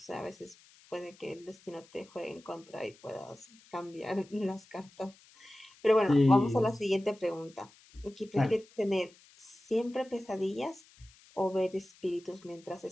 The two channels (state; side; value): noise; left; hiss, 26 dB below the sound